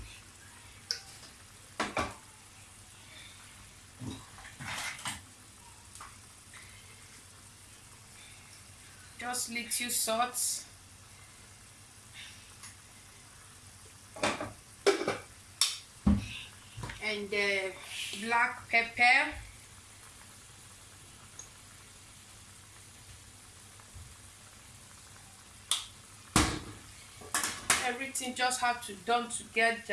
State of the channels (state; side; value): identical; both; correlation 1.00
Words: just little salt. And black pepper. Everything just have to done